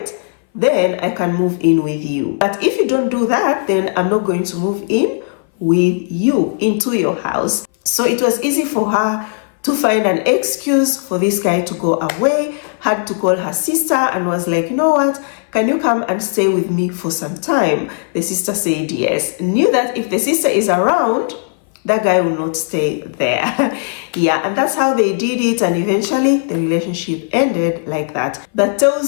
then I can move in with you. But if you don't do that, then I'm not going to move in with you into your house. So it was easy for her to find an excuse for this guy to go away, had to call her sister and was like, you know what, can you come and stay with me for some time? The sister said yes. Knew that if the sister is around, that guy will not stay there. Yeah, and that's how they did it, and eventually the relationship ended like that. That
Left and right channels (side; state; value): right; silent; 60 dB below the other